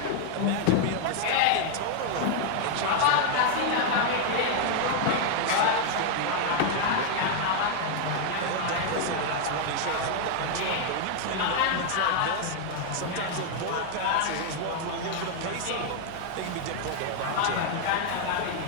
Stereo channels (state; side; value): different; both; correlation 0.00